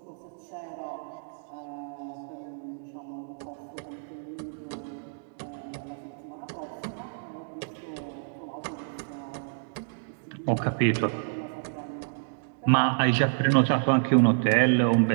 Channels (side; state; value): left; silent; digital silence